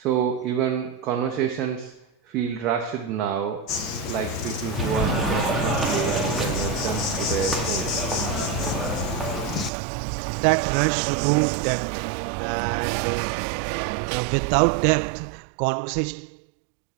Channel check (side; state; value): left; drops out; at 9.7 s